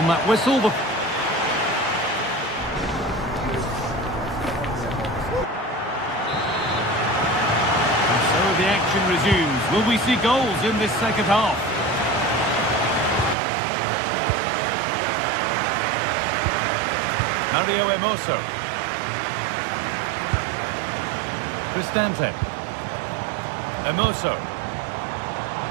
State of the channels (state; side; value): drops out; left; at 13.4 s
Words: that whistle, and so the action resumes. Will we see goals in this second half? Mario Hermoso. Cristante. Hermoso.